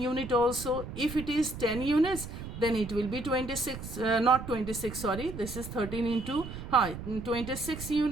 unit also. If it is 10 units, then it will be 26, not 26, sorry, this is 13 into 26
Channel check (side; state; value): right; noise; rumble, 10 dB below the sound